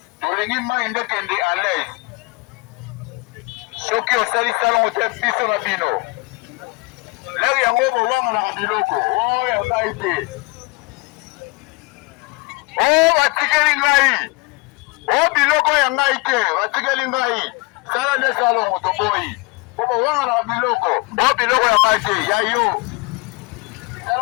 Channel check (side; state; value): right; quieter; 26.2 dB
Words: Tolingi mai ndekende à l'aise. Soki osali salongo te biso na bino. Leki yango bowanga na biloko. Oh ya ngai te. Oh batikeli ngai. Oh biloko ya ngai te. Batikeli ngai. Sala nde salongo toboyi. Bowanga na biloko. Oh biloko ya ngai te. Ya yo.